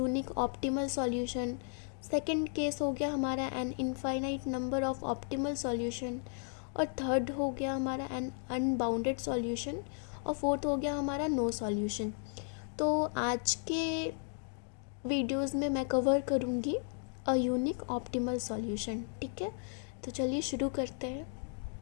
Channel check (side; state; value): right; silent; 55 dB below the other